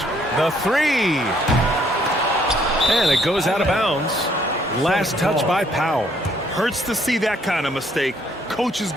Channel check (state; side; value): normal; both; correlation 0.66